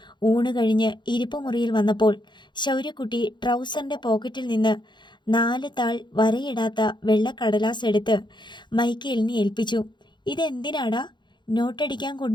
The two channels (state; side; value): late; right; 0.22 ms